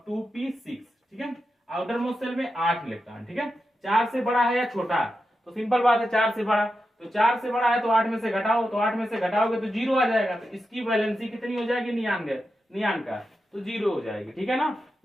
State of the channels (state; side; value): normal; both; correlation 0.89